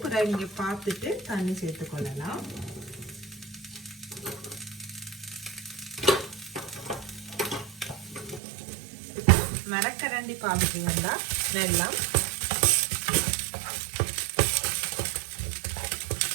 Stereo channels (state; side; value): drops out; left; at 8.4 s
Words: பிறகு நீங்கள் பார்த்துட்டு தண்ணி சேர்த்துக்கொள்ளலாம். மரக்கரண்டி பார்த்துட்டீங்கன்னா வெல்லம்,